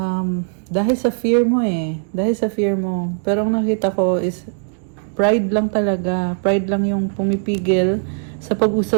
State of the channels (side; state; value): left; silent; digital silence